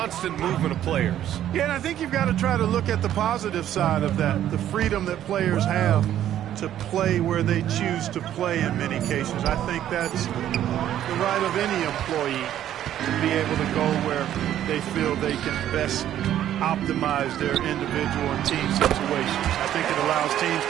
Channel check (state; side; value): quieter; left; 11.5 dB